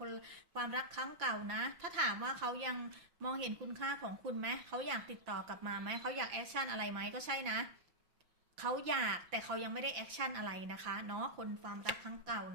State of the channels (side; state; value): left; late; 5.9 ms